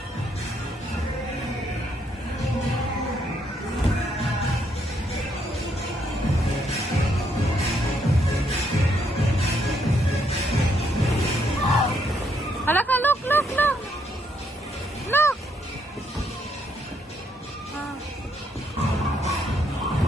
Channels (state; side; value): normal; both; correlation 0.74